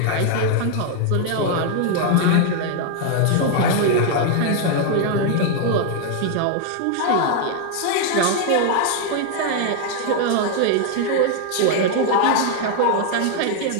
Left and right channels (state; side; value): different; both; correlation 0.00